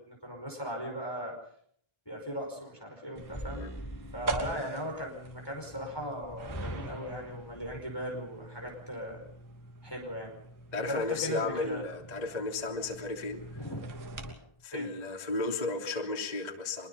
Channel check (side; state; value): right; late; 1.3 ms